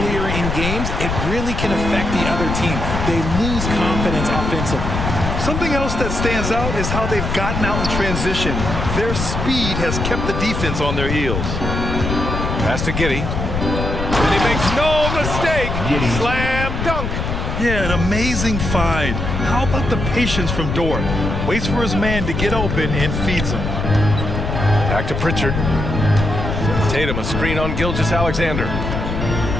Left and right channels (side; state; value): left; noise; rumble, 3 dB below the sound